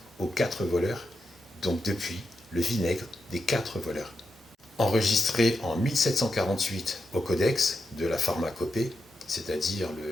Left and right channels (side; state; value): both; normal; correlation 0.86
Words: aux quatre voleurs. Donc depuis, le vinaigre des quatre voleurs. Enregistré en 1748 au codex de la pharmacopée, c'est-à-dire